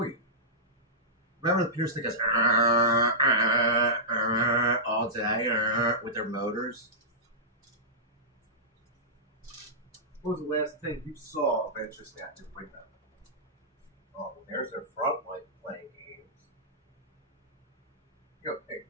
you. Remember the Pierce that goes all day with their motors? What was the last thing you saw of interest out your window? Oh, there's their front light playing games. Big,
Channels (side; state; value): both; normal; correlation -0.15